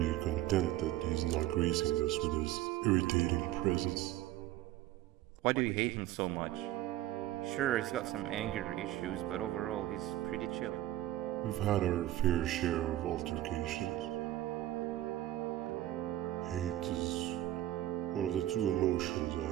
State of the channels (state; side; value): quieter; left; 14.5 dB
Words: content that he's not gracing us with his irritating presence. Why do you hate him so much? Sure, he's got some anger issues, but overall he's pretty chill. We've had our fair share of altercations. Hate is one of the two emotions I